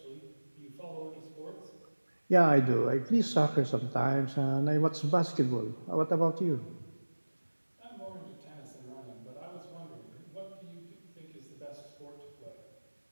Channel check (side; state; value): both; inverted; correlation -1.00